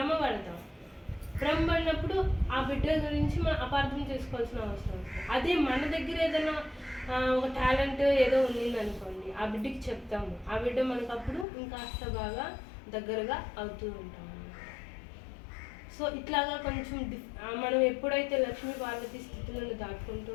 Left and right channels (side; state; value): right; drops out; at 11.5 s